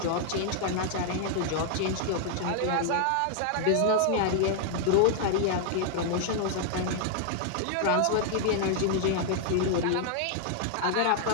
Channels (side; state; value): both; different; correlation 0.00